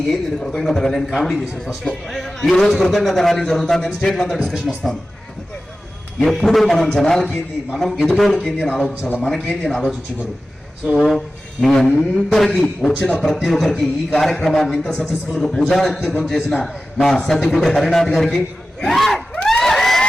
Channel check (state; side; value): normal; both; correlation 0.95